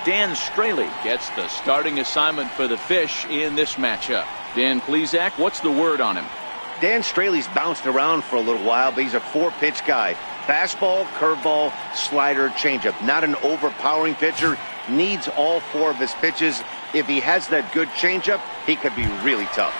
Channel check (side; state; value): both; inverted; correlation -1.00